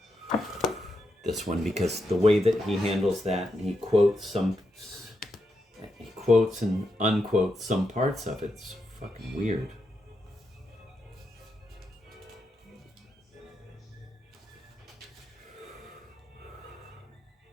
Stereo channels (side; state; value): both; normal; correlation 0.84